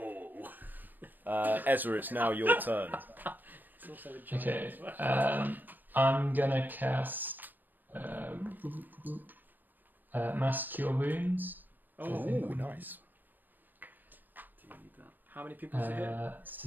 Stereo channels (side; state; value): left; late; 0.090 ms